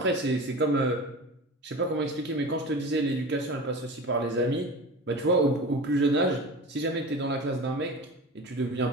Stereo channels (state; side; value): normal; both; correlation 0.32